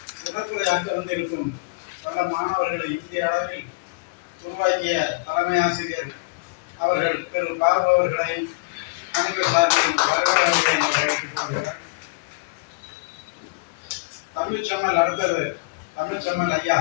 சிறப்புரையாக்க வந்திருக்கும் பல மாணவர்களை இந்திய அளவில் உருவாக்கிய தலைமை ஆசிரியர் அவர்கள் திரு பாபு அவர்களை அனைவர் சார்பிலும் வருகை என்று வரவேற்றுக் கொள்கிறார். தமிழ்ச்செம்மல் அடுத்தது தமிழ்ச்செம்மல் ஐயா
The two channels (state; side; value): quieter; right; 27.0 dB